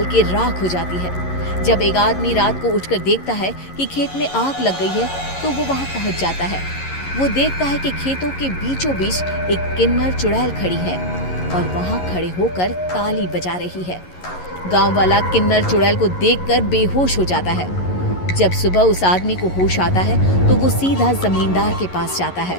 के राख हो जाती है। जब एक आदमी रात को उठकर देखता है कि खेत में आग लग गई है तो वो वहां पहुंच जाता है। वो देखता है कि खेतों के बीचों बीच एक किन्नर चुड़ैल खड़ी है और वहां खड़े होकर ताली बजा रही है। गांव वाला किन्नर चुड़ैल को देखकर बेहोश हो जाता है। जब सुबह उस आदमी को होश आता है तो वो सीधा जमींदार के पास जाता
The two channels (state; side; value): late; right; 11 ms